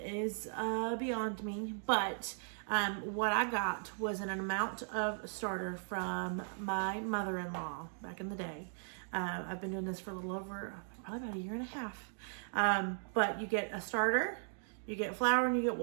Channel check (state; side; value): silent; left; digital silence